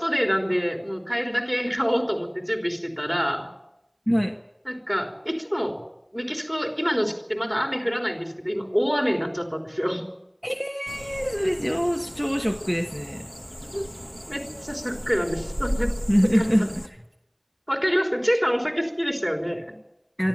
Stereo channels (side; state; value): both; identical; correlation 1.00